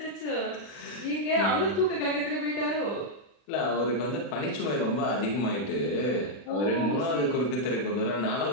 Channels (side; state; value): right; late; 40 ms